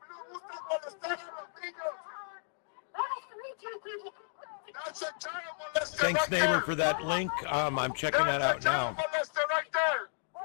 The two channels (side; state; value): right; silent; digital silence